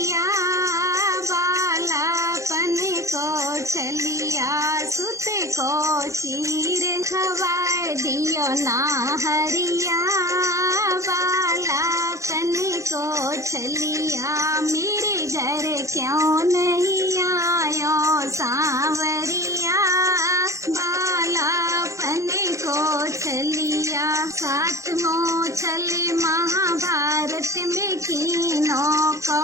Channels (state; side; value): late; left; 0.15 ms